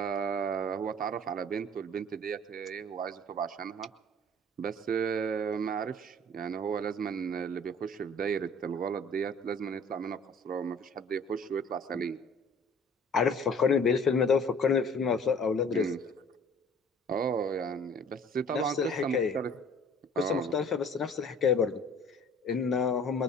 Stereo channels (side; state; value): both; normal; correlation 0.50